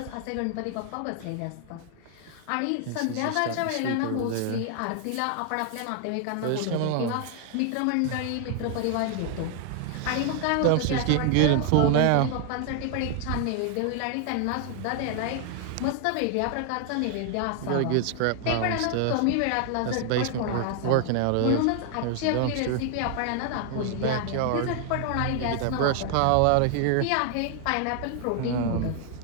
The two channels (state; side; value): different; both; correlation 0.00